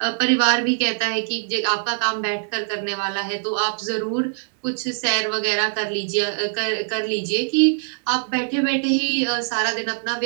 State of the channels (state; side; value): silent; left; 64 dB below the other